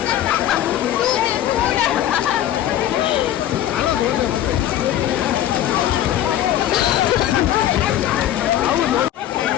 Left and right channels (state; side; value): quieter; right; 12.0 dB